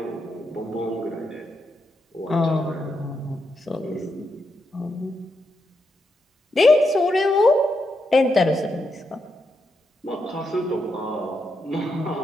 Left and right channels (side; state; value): both; normal; correlation 0.83